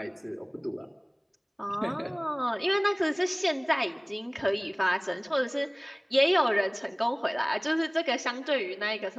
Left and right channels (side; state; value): both; identical; correlation 1.00